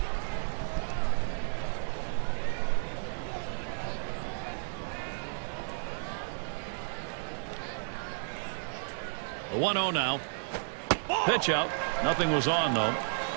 The 1-0 now. Pitch out. Nothing was on, though.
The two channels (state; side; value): silent; left; 56 dB below the other